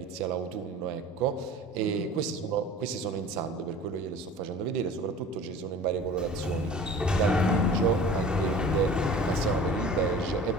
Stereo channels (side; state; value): both; normal; correlation 0.42